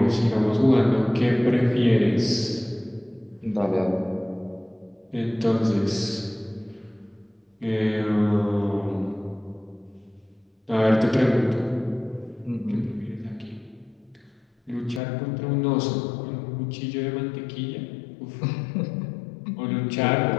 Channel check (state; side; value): drops out; right; at 15.0 s